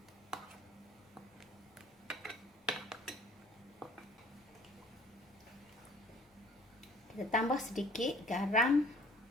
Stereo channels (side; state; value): both; normal; correlation 0.54